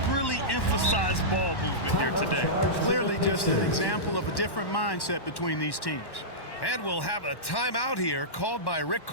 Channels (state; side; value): late; right; 1.1 ms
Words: really emphasized ball movement here today. Clearly just an example of a different mindset between these teams. And we'll have a timeout here called by Rick